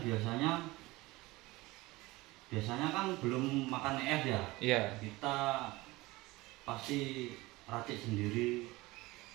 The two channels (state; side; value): quieter; left; 20.9 dB